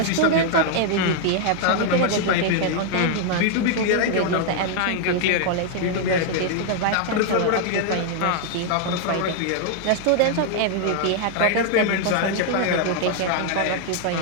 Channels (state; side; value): different; both; correlation 0.00